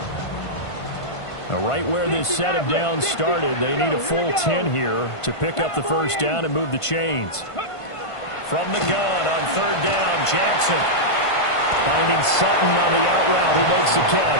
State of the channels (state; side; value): late; right; 1.5 ms